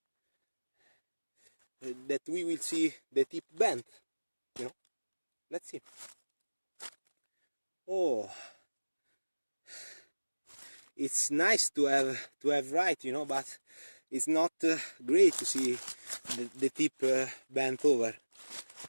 that we will see the tip bent, you know. Let's see. Oh, it's nice to have right, you know, but it's not great to see the tip bent over.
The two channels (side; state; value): both; inverted; correlation -1.00